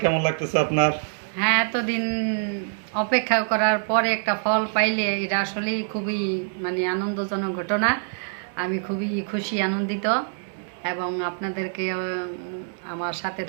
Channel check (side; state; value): left; silent; 62 dB below the other